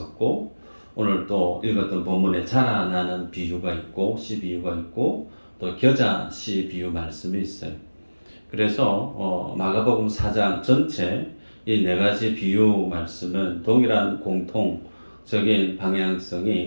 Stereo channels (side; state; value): both; inverted; correlation -1.00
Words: 오늘 또 읽었던 본문에 자라나는 비유가 있고 씨 비유가 있고 또 겨자 씨 비유 말씀이 있어요. 그래서 마가복음 4장 전체 이 네 가지 비유 말씀은 동일한 공통적인